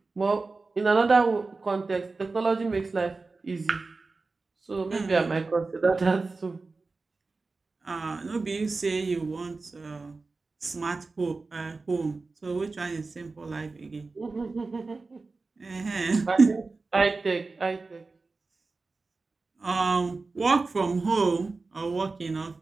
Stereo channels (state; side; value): quieter; left; 3.8 dB